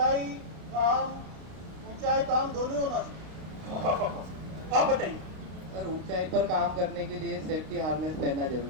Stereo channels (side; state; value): left; late; 32 ms